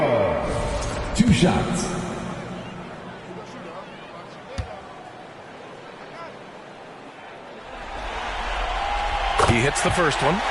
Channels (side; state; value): both; identical; correlation 1.00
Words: 2 shots. He hits the first one,